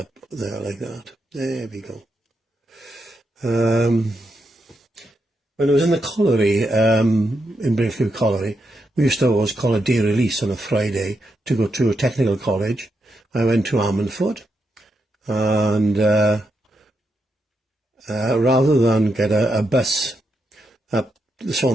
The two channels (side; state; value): both; normal; correlation 0.83